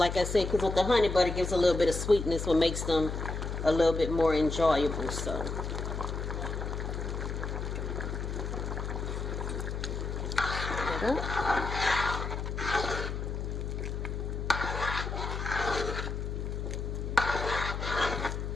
I said, because with the honey butter, it gives a little bit of sweetness, what makes them a little bit more enjoyable. So. There we go.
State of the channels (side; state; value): left; noise; hum, 4 dB below the sound